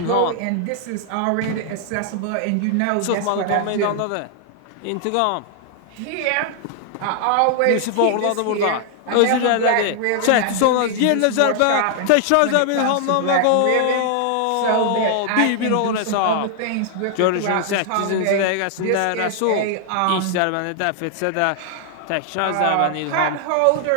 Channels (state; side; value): different; both; correlation 0.00